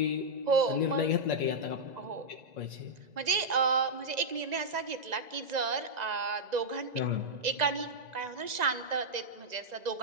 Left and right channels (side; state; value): left; late; 2.0 ms